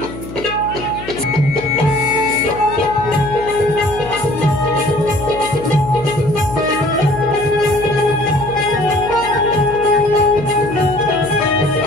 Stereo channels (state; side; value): noise; left; hum, 12 dB below the sound